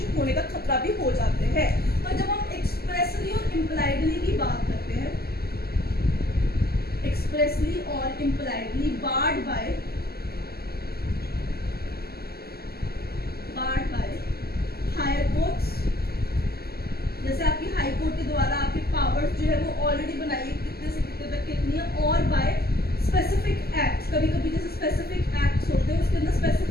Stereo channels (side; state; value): right; late; 0.45 ms